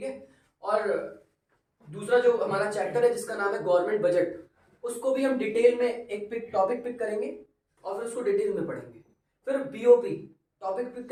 है। और दूसरा जो हमारा चैप्टर है जिसका नाम है गवर्नमेंट बजट, उसको भी हम डिटेल में एक टॉपिक पिक करेंगे और फिर उसको डिटेल में पढ़ेंगे। फिर बीओपी टॉपिक पिक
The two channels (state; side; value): identical; both; correlation 1.00